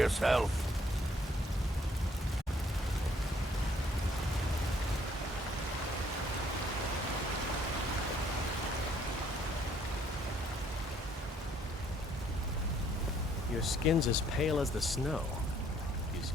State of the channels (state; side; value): normal; both; correlation 0.65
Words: Your skin's as pale as the snow. You